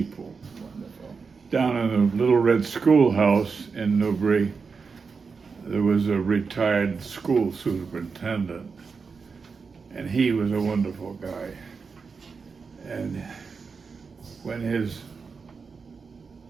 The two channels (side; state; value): left; quieter; 5.1 dB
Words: Wonderful. Down in the Little Red Schoolhouse in Newbury, there was a retired school superintendent, and he was a wonderful guy. And when his